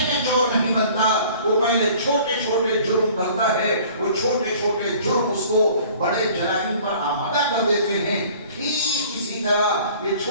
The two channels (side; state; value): both; inverted; correlation -0.50